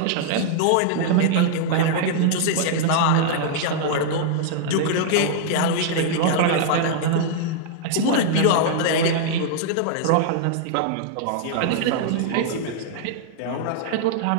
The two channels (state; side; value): different; both; correlation -0.01